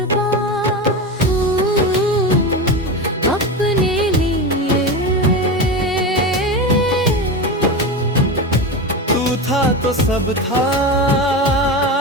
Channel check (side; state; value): both; normal; correlation 0.21